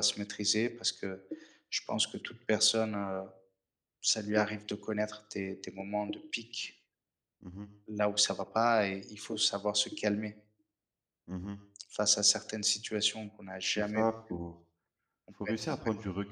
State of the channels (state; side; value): identical; both; correlation 1.00